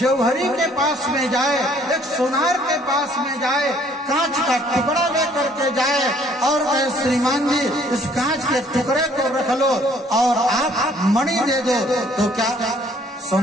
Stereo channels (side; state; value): both; normal; correlation 0.60